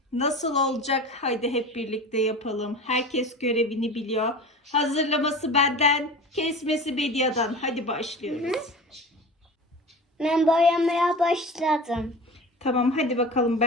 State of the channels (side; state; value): both; normal; correlation 0.34